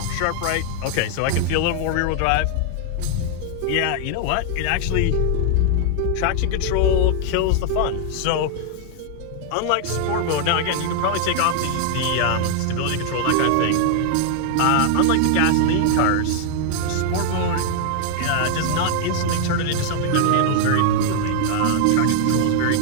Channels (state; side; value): different; both; correlation 0.00